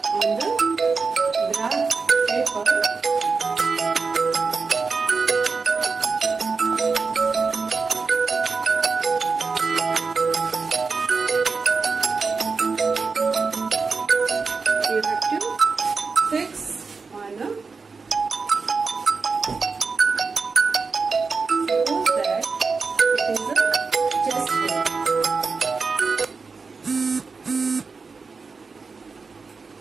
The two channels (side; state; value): left; quieter; 4.7 dB